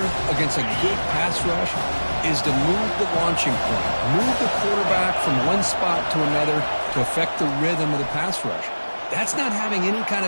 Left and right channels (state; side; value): inverted; both; correlation -1.00